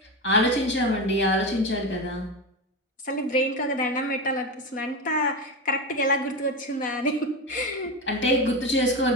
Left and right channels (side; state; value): both; normal; correlation 0.19